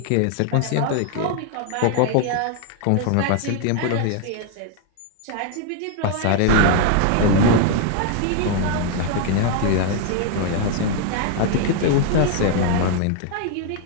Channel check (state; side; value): different; both; correlation 0.00